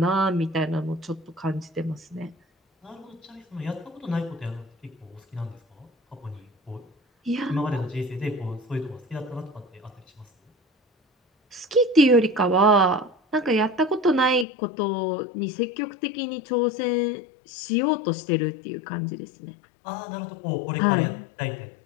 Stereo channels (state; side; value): drops out; right; at 14.5 s